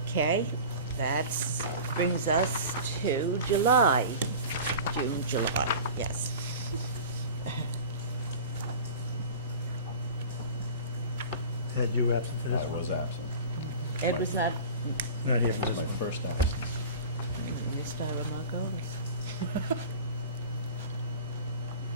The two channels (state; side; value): inverted; both; correlation -0.37